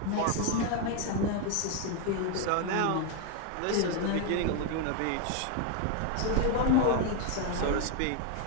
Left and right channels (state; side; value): different; both; correlation 0.01